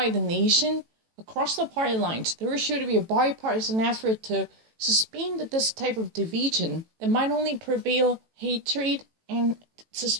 the nation across the party lines. There should be a bipartisan effort to suspend this type of division that might only prevail hatred and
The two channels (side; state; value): left; late; 18 ms